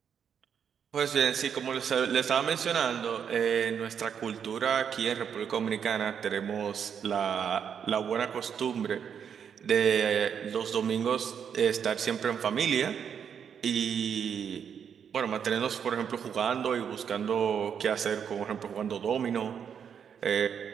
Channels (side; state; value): left; quieter; 7.7 dB